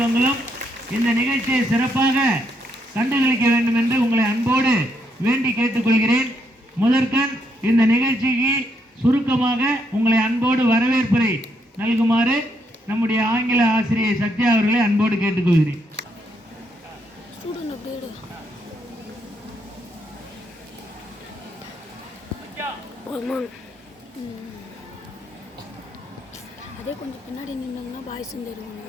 இந்த நிகழ்ச்சியை சிறப்பாக கண்டுகளிக்க வேண்டும் என்று உங்களை அன்போடு வேண்டி கேட்டுக்கொள்கிறேன். முதற்கண் இந்த நிகழ்ச்சிக்கு சுருக்கமாக உங்களை அன்போடு வரவேற்புரை நல்குமாறு நம்முடைய ஆங்கில ஆசிரியை சத்யா அவர்களை அன்போடு கேட்டுக்கொள்கிறேன். அதே கொஞ்சம் பின்னாடி நின்னாங்கன்னா பாய்ஸும் தெரியுங்க.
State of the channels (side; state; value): both; normal; correlation 0.76